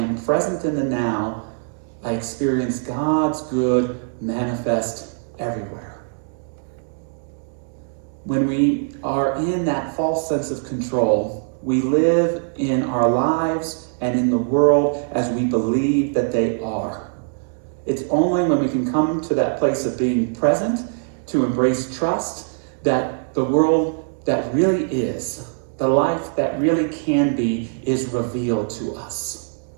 present in the now, I experience God's good manifest everywhere. When we are in that false sense of control, we live in our lives and in the world as we believe that they are. It's only when we can come to that place of being present, to embrace trust, that the world that really is, the life that really can be, is revealed to us.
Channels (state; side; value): silent; left; digital silence